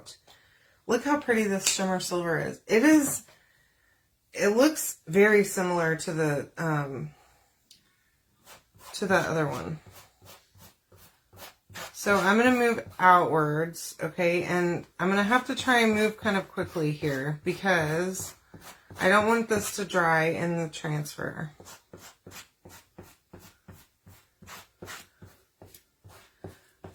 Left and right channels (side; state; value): both; identical; correlation 1.00